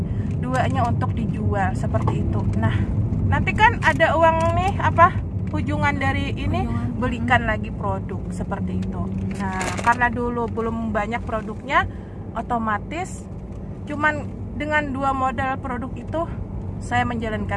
2-nya untuk dijual, seperti itu. Nah, nanti kan ada uang nih ujungan dari ini, belikan lagi produk seperti itu. Nah, karena dulu belum banyak produknya, otomatis cuman dengan 2 modal produk itu saya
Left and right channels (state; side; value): identical; both; correlation 1.00